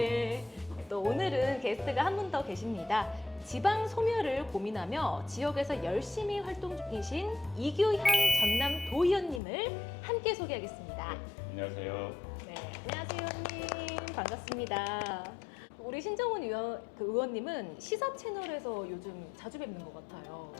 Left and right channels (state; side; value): drops out; right; at 9.4 s